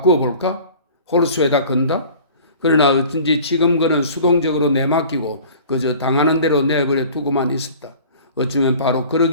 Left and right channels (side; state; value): both; inverted; correlation -0.45